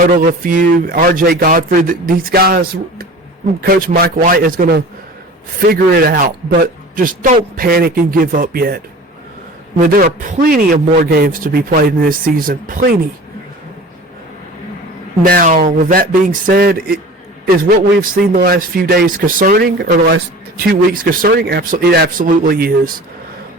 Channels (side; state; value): both; normal; correlation 0.39